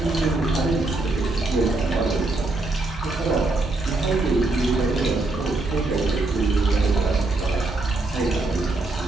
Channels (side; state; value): left; quieter; 3.1 dB